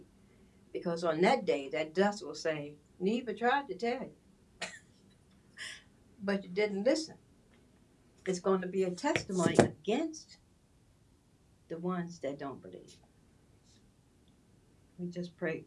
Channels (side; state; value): both; identical; correlation 1.00